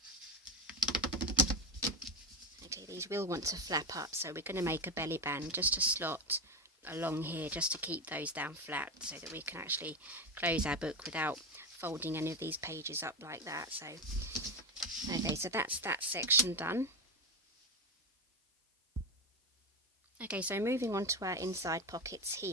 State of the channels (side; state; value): both; normal; correlation 0.16